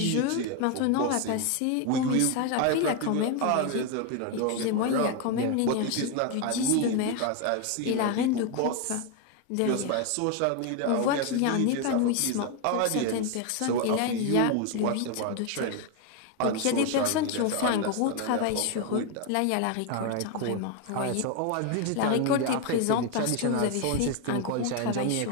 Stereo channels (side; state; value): both; different; correlation 0.01